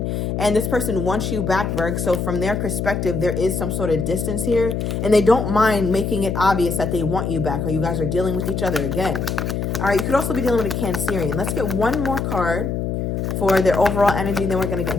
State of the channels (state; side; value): noise; left; hum, 2 dB below the sound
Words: and this person wants you back, Virg. So from their perspective, there is some sort of distance here and they don't mind making it obvious that they want you back or you guys are dealing with each other again. All right, you could also be dealing with a Cancerian. Let's get one more card for their overall energy, then we're going to get